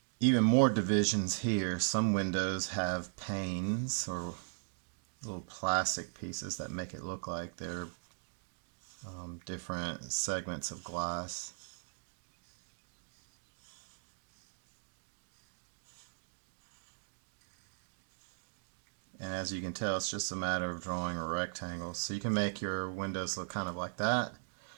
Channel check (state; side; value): silent; left; digital silence